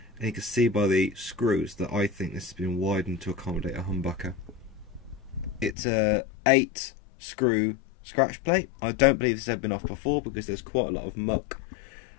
and you can see by the screws that I think this has been widened to accommodate a Humbucker. It's a 8 screw scratch plate. I don't believe this has ever been off before because there's quite a lot of muck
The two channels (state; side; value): drops out; right; at 5.8 s